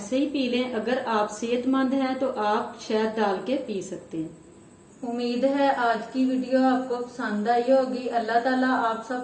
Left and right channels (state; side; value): identical; both; correlation 1.00